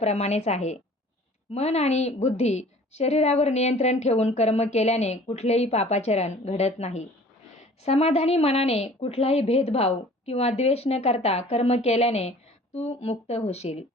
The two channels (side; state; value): both; normal; correlation 0.48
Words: आहे. मन आणि बुद्धी शरीरावर नियंत्रण ठेवून कर्म केल्याने कुठलेही पापाचरण घडत नाही. समाधानी मनाने कुठलाही भेदभाव किंवा द्वेष न करता कर्म केल्याने तू मुक्त होशील.